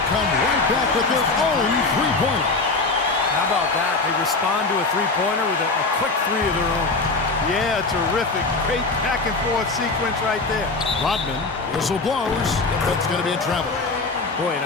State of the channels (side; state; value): right; quieter; 3.7 dB